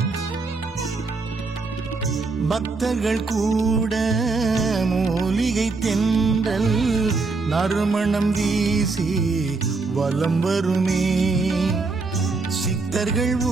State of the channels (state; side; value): quieter; left; 3.9 dB